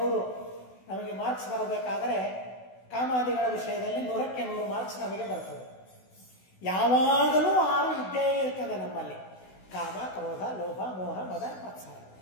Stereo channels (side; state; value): right; late; 16 ms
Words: ನಮಗೆ ಮಾರ್ಕ್ಸ್ ಬರಬೇಕಾದರೆ ಕಾಮಾದಿಗಳ ವಿಷಯದಲ್ಲಿ 100ಕ್ಕೆ 100 ಮಾರ್ಕ್ಸ್ ನಮಗೆ ಬರ್ತದೆ. ಯಾವಾಗಲೂ 6 ಇದ್ದೇ ಇರ್ತದೆ ನಮ್ಮಲ್ಲಿ. ಕಾಮ, ಕ್ರೋಧ, ಲೋಭ, ಮೋಹ, ಮದ, ಮತ್ಸರ,